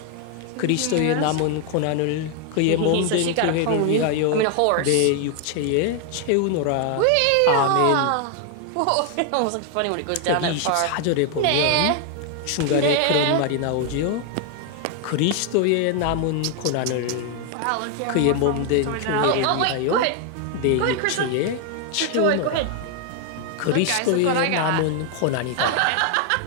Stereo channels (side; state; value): both; different; correlation 0.00